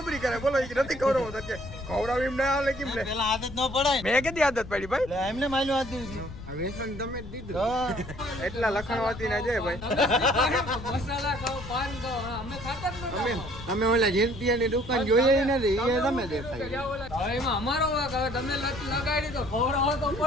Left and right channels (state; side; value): noise; left; rumble, 12 dB below the sound